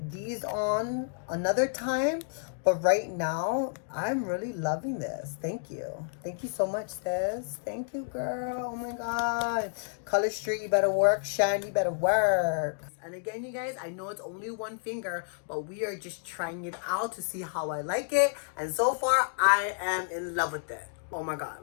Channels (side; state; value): right; silent; digital silence